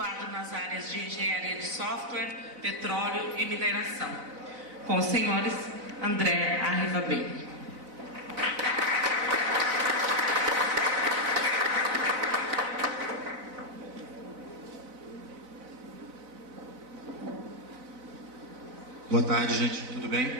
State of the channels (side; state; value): left; late; 4.0 ms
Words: nas áreas de engenharia de software, petróleo e mineração. Com os senhores André Arrivabene. Boa tarde, gente. Tudo